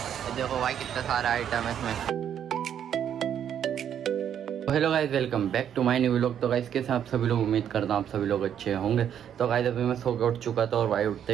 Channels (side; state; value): left; quieter; 9.3 dB